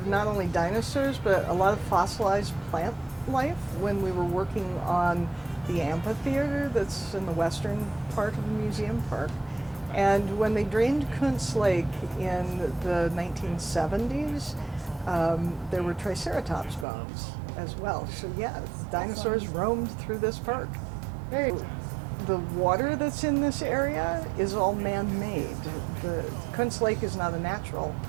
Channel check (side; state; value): left; drops out; at 16.9 s